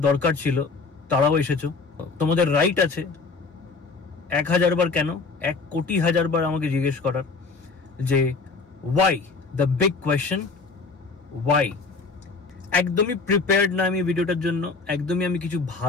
দরকার ছিল তারাও এসেছো। তোমাদের রাইট আছে 1000 বার কেন, 1 কোটি হাজার বার আমাকে জিজ্ঞেস করার যে why, the big question why. একদমই প্রিপেয়ার্ড না আমি ভিডিওটার জন্য, একদমই আমি কিছু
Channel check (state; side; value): quieter; right; 4.3 dB